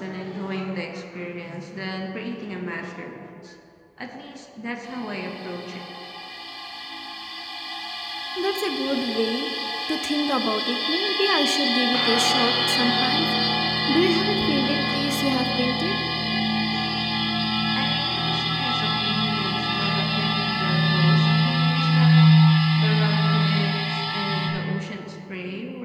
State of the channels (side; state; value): both; identical; correlation 1.00